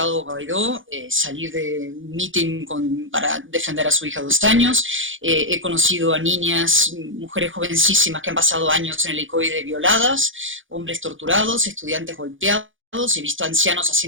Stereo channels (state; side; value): late; left; 0.57 ms